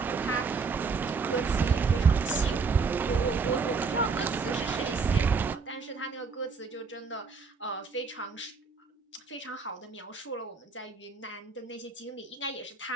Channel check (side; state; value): left; quieter; 4.8 dB